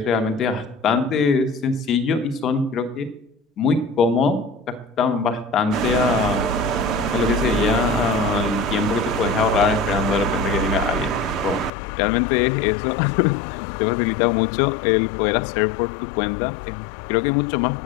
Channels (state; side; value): drops out; right; at 11.7 s